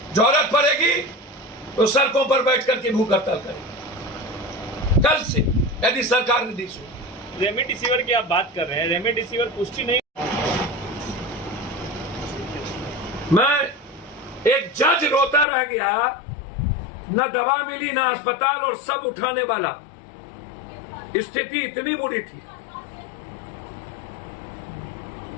जरूरत पड़ेगी तो सड़कों पर बैठ करके भूख हड़ताल करेंगे कल से, यदि सरकार ने दी। रेमडेसिविर की आप बात कर रहे हैं, रेमडेसिविर पुष्टि नहीं। मैं एक जज रोता रह गया, न दवा मिली न अस्पताल, और सब उठाने वाला। स्थिति इतनी बुरी थी।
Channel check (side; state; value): right; drops out; at 15.5 s